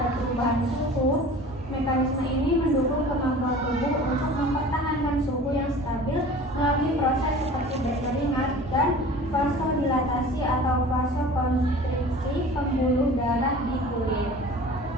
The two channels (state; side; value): normal; both; correlation 0.42